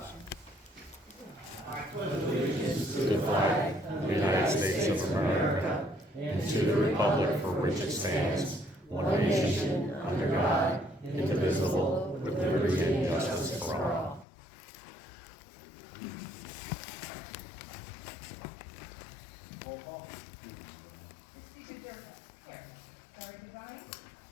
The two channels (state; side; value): drops out; right; at 14.2 s